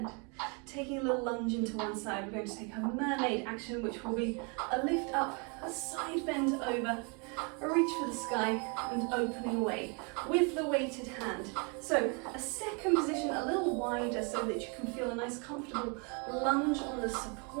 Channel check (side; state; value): left; quieter; 34.0 dB